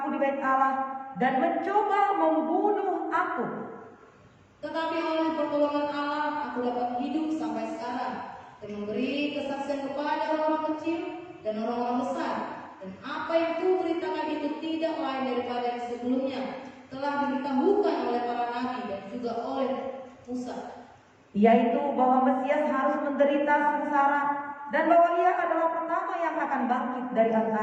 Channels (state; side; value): identical; both; correlation 1.00